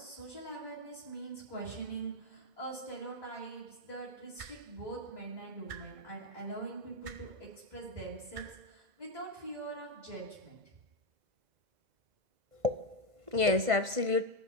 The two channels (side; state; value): left; late; 1.5 ms